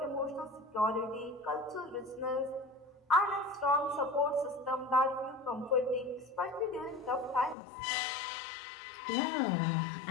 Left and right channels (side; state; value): right; drops out; at 7.6 s